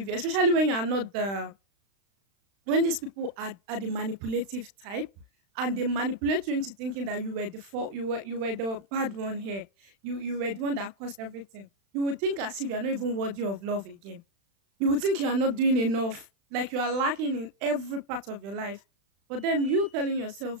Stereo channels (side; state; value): left; late; 36 ms